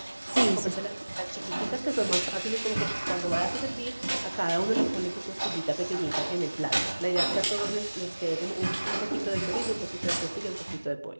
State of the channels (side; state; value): both; inverted; correlation -1.00